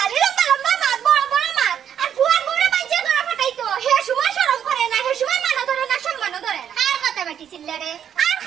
লম্বা লম্বা মাছ বড় বড় মাছ আর ফুয়ার বড় বাইজে ধরা ফাটাইতো হে সময় শরম করে না হে সময় মানা ধরে না সম্মান ধরে না আর কথা বাটি ছিলরে আর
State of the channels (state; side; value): quieter; left; 9.0 dB